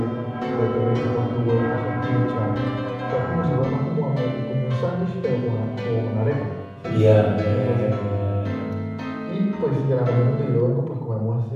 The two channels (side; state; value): both; identical; correlation 1.00